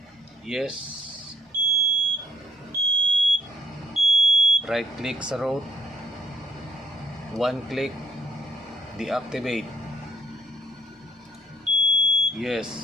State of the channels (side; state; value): both; normal; correlation 0.67